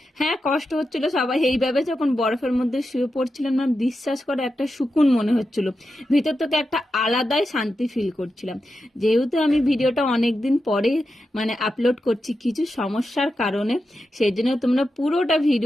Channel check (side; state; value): both; normal; correlation 0.89